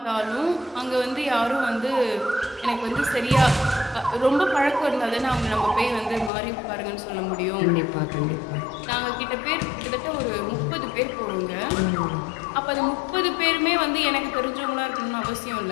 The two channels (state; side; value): drops out; right; at 6.3 s